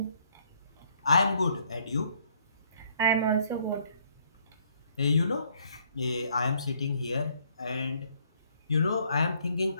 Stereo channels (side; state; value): both; inverted; correlation -0.66